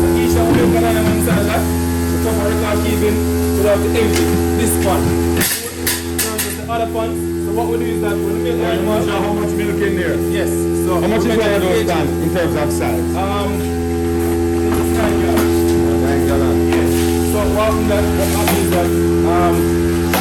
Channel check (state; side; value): identical; both; correlation 1.00